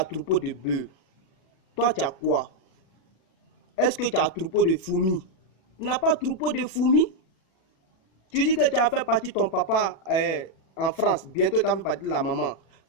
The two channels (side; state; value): right; late; 36 ms